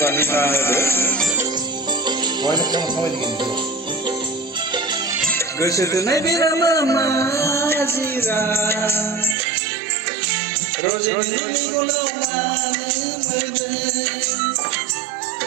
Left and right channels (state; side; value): drops out; left; at 9.3 s